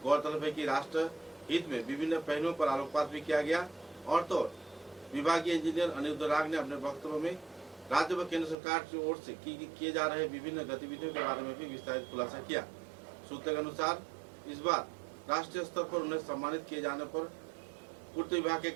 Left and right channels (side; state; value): left; drops out; at 8.6 s